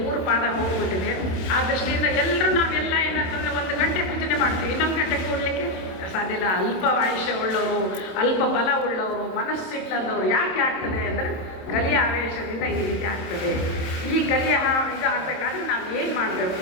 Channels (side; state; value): right; late; 27 ms